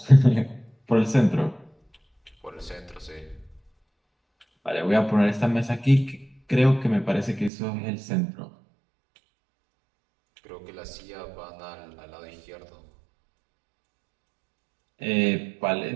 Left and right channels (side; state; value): left; drops out; at 7.5 s